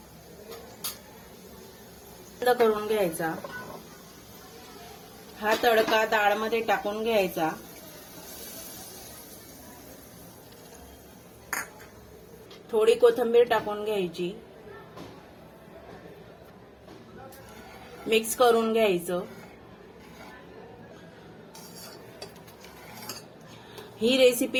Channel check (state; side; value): identical; both; correlation 1.00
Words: बंद करून घ्यायचा. हा तडका डाळमध्ये टाकून घ्यायचा. थोडी कोथिंबीर टाकून घ्यायची. मिक्स करून घ्यायचं. ही